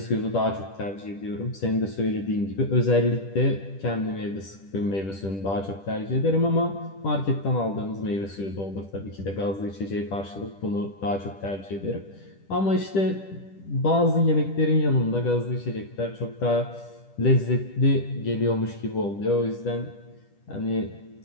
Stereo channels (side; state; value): right; late; 10 ms